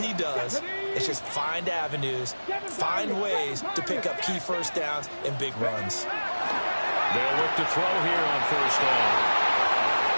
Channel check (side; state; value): both; inverted; correlation -1.00